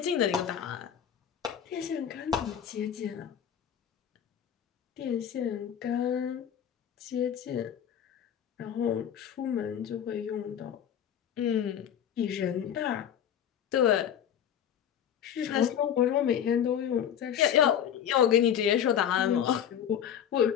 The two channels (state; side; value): quieter; right; 9.2 dB